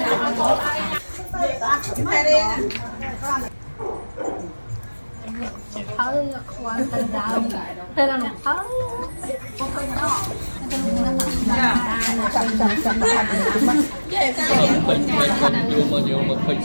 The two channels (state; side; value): inverted; both; correlation -1.00